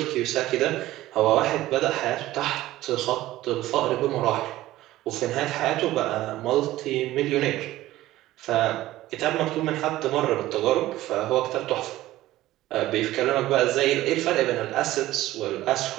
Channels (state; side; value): quieter; left; 15.8 dB